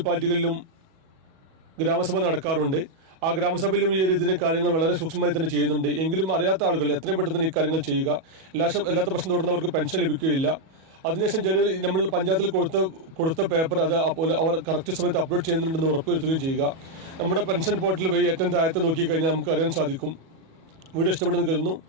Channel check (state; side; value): late; left; 37 ms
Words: ഗ്രാമസഭ നടക്കാറുണ്ട്. ആ ഗ്രാമസഭയിലും ഈ ഇതിൻ്റെ കാര്യങ്ങൾ വളരെ സൂക്ഷ്മമായി തന്നെ ചെയ്യുന്നുണ്ട്. എങ്കിലും അറിയാത്ത ആളുകൾ എത്രയും പെട്ടെന്ന് ഈ കാര്യങ്ങൾ ചെയ്യുക. എല്ലാത്ത പക്ഷം തുടർന്നവർക്ക് പെൻഷൻ ലഭിക്കുകയില്ല. അതിനുശേഷം ജനുവരി നമ്മൾ പഞ്ചായത്തിൽ കൊടുത്ത പേപ്പർ അത് അവർ കറക്റ്റ് സമയത്ത് അപ്ലോഡ് ചെയ്യുന്നുണ്ടെന്ന് ഉറപ്പുവരുത്തുകയും ചെയ്യുക. നമ്മുടെ പെൻഷൻ പോർട്ടൽ വഴി ഏറ്റവും താഴത്ത് നോക്കിക്കഴിഞ്ഞാൽ നമുക്ക് അറിയാൻ സാധിക്കും. വീഡിയോ ഇഷ്ടപ്പെടുന്നത് കരുതുന്നു.